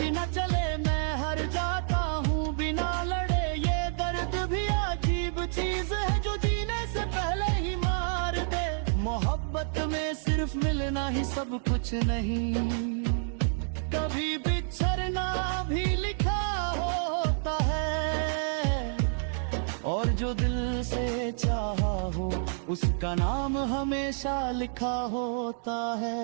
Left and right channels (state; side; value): silent; left; 59 dB below the other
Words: चले, मैं हार जाता हूँ बिना लड़े। ये दर्द भी अजीब चीज है जो जीने से पहले ही मार दे। मोहब्बत में सिर्फ मिलना ही सब कुछ नहीं, कभी बिछड़ना भी लिखा होता है। और जो दिल से चाहा हो उसका नाम हमेशा लिखा होता है।